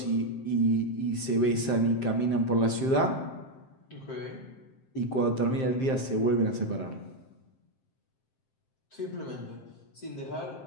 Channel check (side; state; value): right; late; 7.6 ms